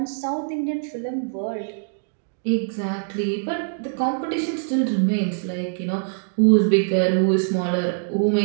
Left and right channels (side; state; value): left; silent; digital silence